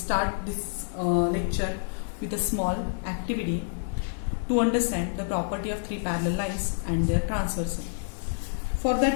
this lecture with a small activity to understand the property of three parallel lines and their transversal. For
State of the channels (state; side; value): silent; right; 59 dB below the other